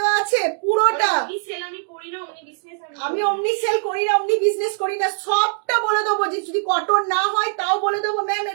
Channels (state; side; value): silent; left; digital silence